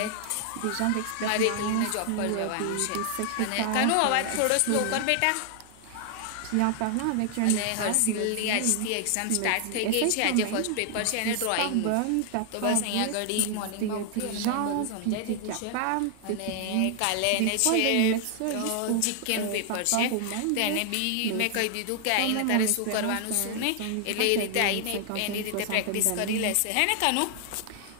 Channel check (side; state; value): both; different; correlation 0.00